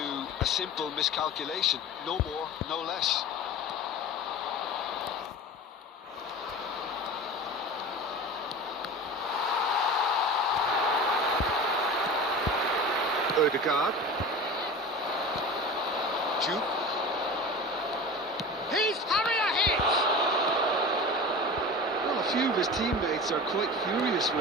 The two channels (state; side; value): normal; both; correlation 0.33